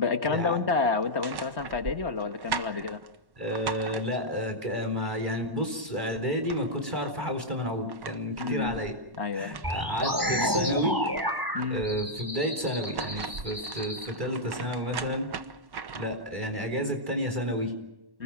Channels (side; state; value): left; late; 1.1 ms